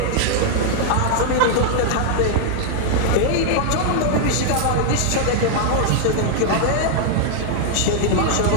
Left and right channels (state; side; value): different; both; correlation 0.00